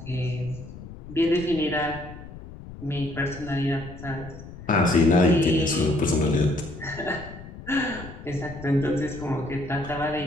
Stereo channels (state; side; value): noise; left; rumble, 14 dB below the sound